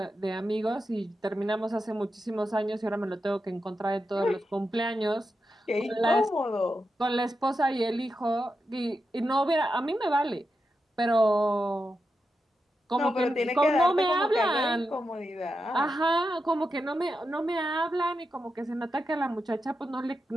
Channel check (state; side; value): normal; both; correlation 0.88